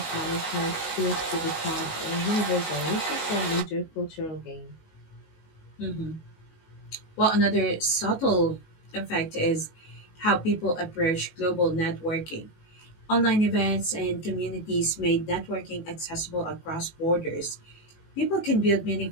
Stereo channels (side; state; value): right; late; 19 ms